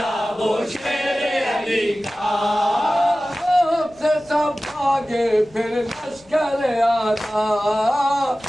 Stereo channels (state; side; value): noise; left; rumble, 28 dB below the sound